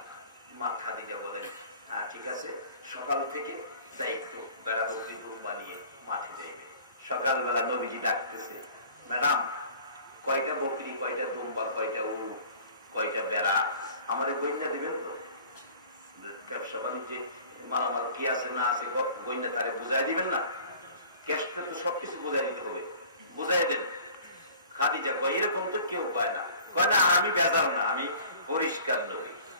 মা খাদিজা বলেন, হ্যাঁ ঠিক আছে, সকাল থেকে দায়িত্ব, বেড়া বকরি রুম বানিয়ে মাঠে দেবে। সকালবেলা নবীজি ডাকতেছে, ম্যাডাম কয়টা বকরি, কয়টা দুম্বা, কয়টা উট, কয়টা বেড়া আমাদের গইনা দিবেন তো? ব্যবসা বাণিজ্যে মালামাল কি আছে না আছে গইনা তারে বুঝাই দিবেন না? ক্যাশটা তো সবকিছু বুঝাই দিতে হবে, বুঝাই দেন। খাদিজা কয়, এরকম তো কেউ কয় না। কয় না, আমি বেজাল না, আমি পরিষ্কার নবী,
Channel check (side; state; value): both; inverted; correlation -0.47